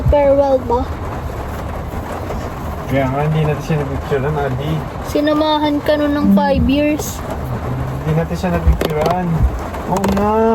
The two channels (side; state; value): both; identical; correlation 1.00